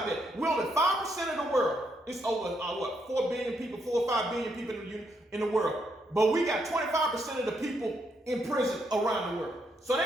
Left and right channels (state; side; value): normal; both; correlation 0.77